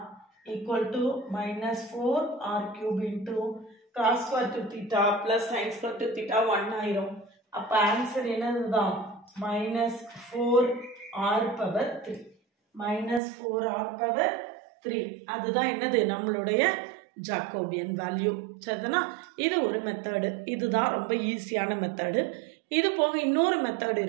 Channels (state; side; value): drops out; left; at 13.2 s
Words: equal to minus 4r cube into cos square 2 theta plus sin square 2 theta 1 ஆயிரும். அப்ப answer என்னதுதான் minus 4r power 3. minus 4r power 3. அதுதான் என்னது நம்மளுடைய Jacobian value. சரிதானா? இது ஒரு method. இதுதான் ரொம்ப ஈஸியான மெத்தடு. இது போக இன்னொரு மெத்தட்